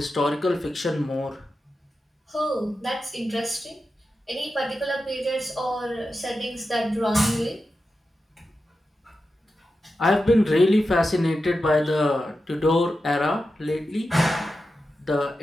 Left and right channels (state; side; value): normal; both; correlation 0.91